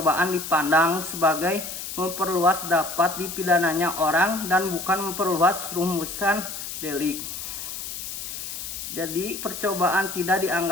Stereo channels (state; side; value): noise; left; hiss, 7 dB below the sound